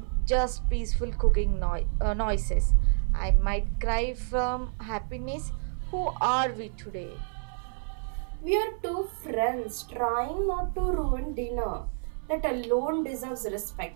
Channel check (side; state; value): left; silent; 58 dB below the other